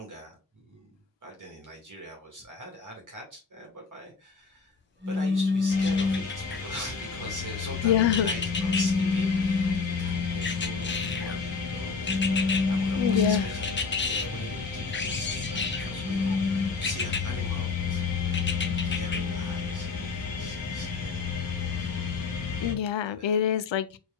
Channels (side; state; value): right; quieter; 5.0 dB